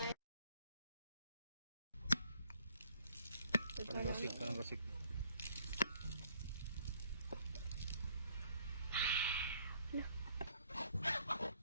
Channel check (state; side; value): inverted; both; correlation -0.65